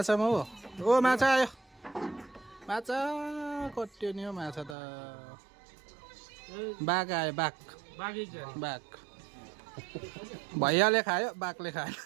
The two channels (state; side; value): drops out; left; at 4.8 s